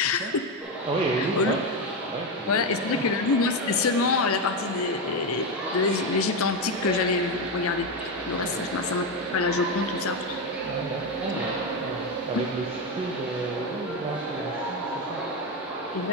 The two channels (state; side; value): normal; both; correlation 0.11